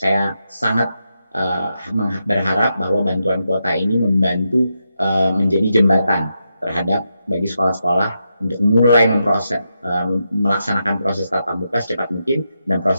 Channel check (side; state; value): both; inverted; correlation -0.85